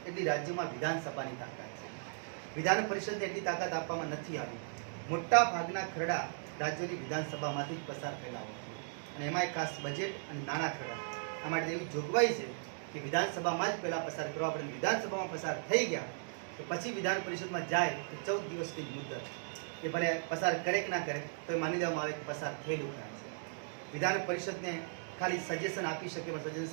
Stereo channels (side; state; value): left; silent; digital silence